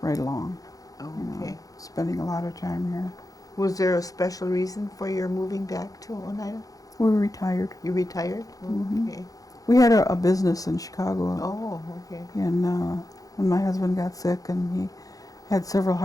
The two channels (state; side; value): late; right; 0.17 ms